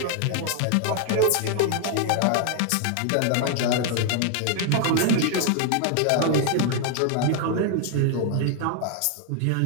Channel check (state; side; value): different; both; correlation 0.00